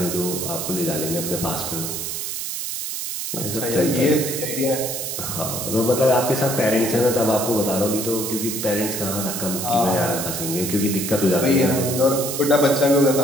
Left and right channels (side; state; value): right; noise; hiss, 4 dB below the sound